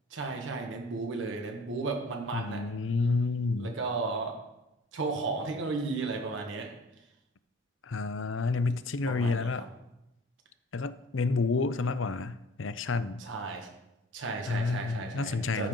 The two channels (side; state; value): both; normal; correlation 0.48